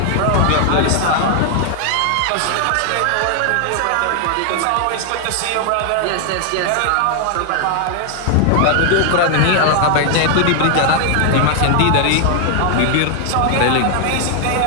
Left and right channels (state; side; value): different; both; correlation 0.00